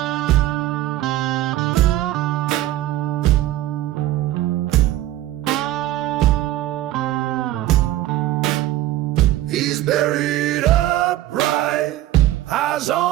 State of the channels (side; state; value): left; quieter; 14.7 dB